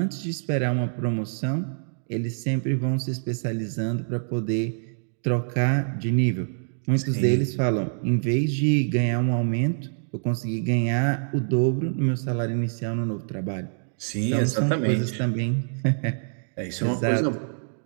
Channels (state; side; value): silent; left; digital silence